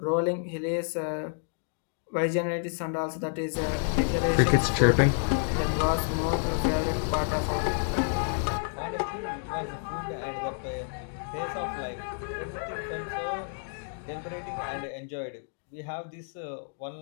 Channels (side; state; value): right; silent; 58 dB below the other